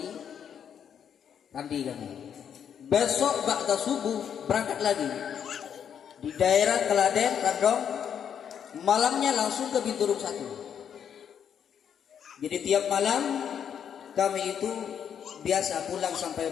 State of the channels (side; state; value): right; quieter; 8.3 dB